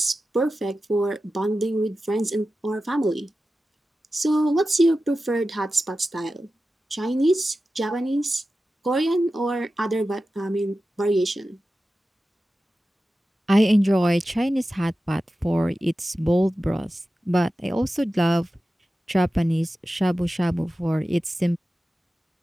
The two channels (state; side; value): normal; both; correlation 0.93